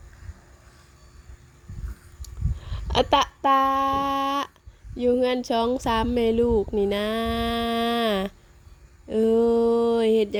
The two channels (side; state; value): both; identical; correlation 1.00